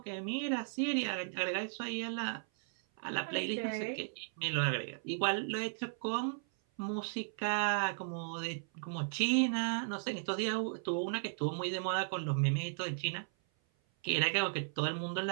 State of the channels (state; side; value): silent; left; 54 dB below the other